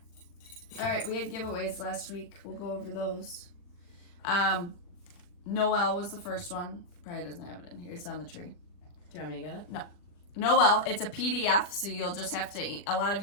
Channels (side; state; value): right; late; 40 ms